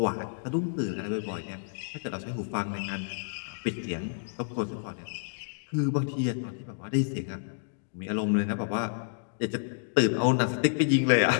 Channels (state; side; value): silent; right; digital silence